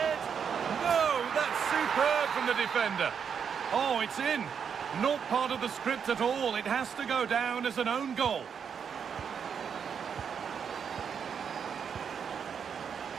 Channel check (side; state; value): left; quieter; 7.1 dB